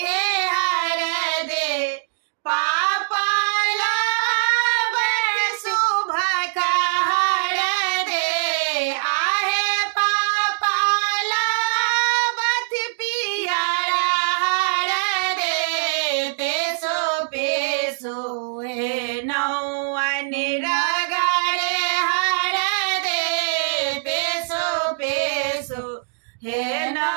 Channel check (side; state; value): left; silent; digital silence